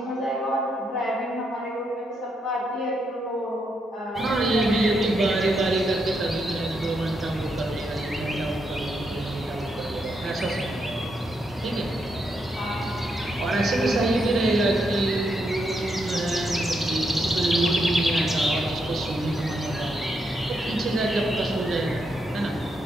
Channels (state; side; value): normal; both; correlation 0.80